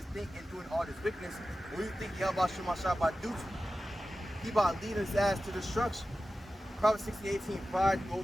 think in doing all this wickedness. What do you think YAHAWASHI about to do to him? He about to lead his ass to destruction. Proverbs 16:18, pride goes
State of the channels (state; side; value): normal; both; correlation 0.94